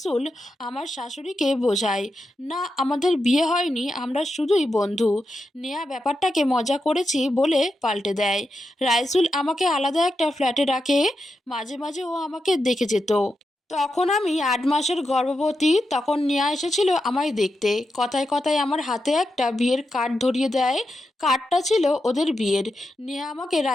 আমার শাশুড়িকে বোঝাই, না আমাদের বিয়ে হয়নি, আমরা শুধুই বন্ধু। নেয়া ব্যাপারটাকে মজা করেছি বলে পাল্টে দেয়। রাইসুল আমাকে আলাদা একটা ফ্ল্যাটে রাখে, মাঝে মাঝে ও আমাকে দেখে যেত। তখন আমি ৮ মাসের গর্ভবতী। তখন নেয়া এসেছিল আমায় দেখতে, কথায় কথায় আমার হাতে একটা বিয়ের কার্ড ধরিয়ে দেয়। কার্ডটা ছিল ওদের বিয়ের। নেয়া আমাকে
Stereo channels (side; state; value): both; normal; correlation 0.87